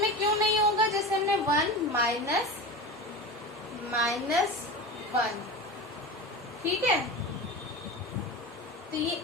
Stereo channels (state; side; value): normal; both; correlation 0.28